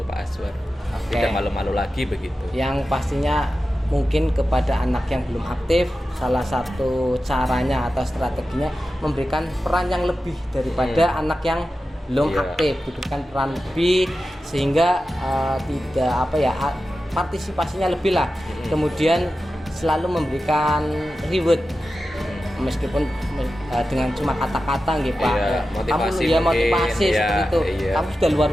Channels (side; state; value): both; normal; correlation 0.93